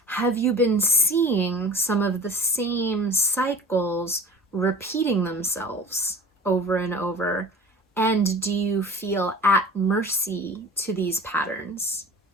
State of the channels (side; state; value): both; normal; correlation 0.40